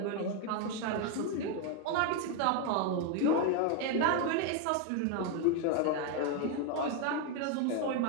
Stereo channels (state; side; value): different; both; correlation 0.01